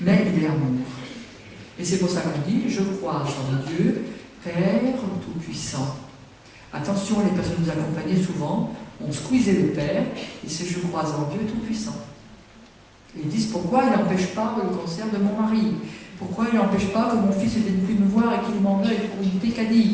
il est amour. Et c'est pour ça qu'on dit, je crois en Dieu, Père Tout-Puissant. Attention, les personnes nous accompagnaient souvent, on squeezait le Père, et c'est je crois en Dieu Tout-Puissant. Et ils disent, pourquoi il n'empêche pas le cancer de mon mari? Pourquoi il n'empêche pas que mon fils ne vienne plus me voir et qu'il m'en veuille pour une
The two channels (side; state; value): both; identical; correlation 1.00